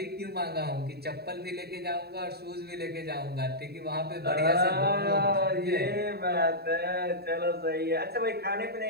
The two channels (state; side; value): late; left; 0.46 ms